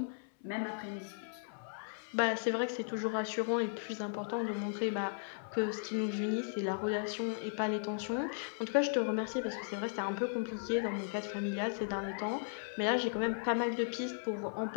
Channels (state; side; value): silent; right; 54 dB below the other